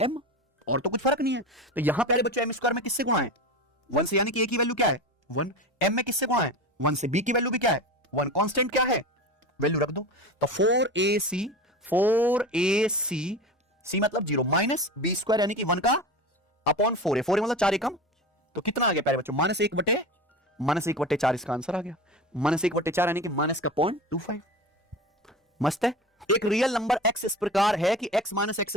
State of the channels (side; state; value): both; normal; correlation 0.29